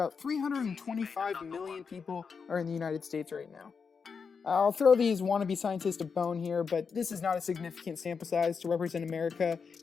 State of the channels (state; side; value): quieter; right; 5.7 dB